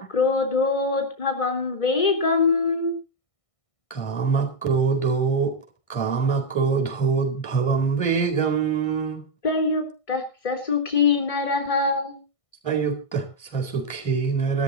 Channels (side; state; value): right; late; 1.6 ms